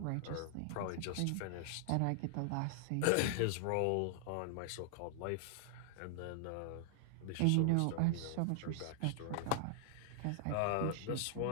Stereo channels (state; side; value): different; both; correlation -0.01